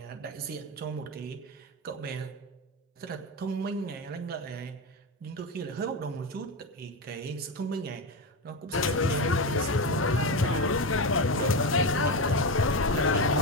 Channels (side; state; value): both; normal; correlation 0.16